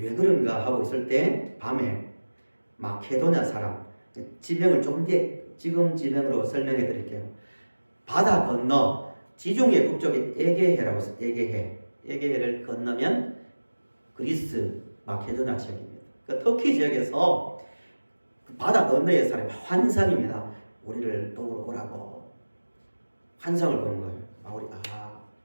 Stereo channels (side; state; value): both; inverted; correlation -1.00